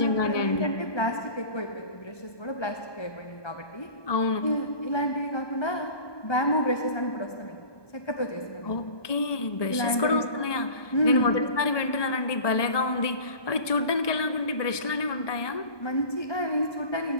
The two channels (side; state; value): right; late; 1.2 ms